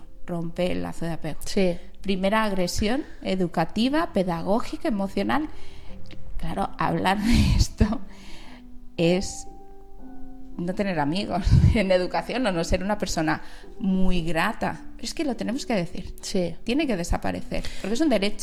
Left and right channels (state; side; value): identical; both; correlation 1.00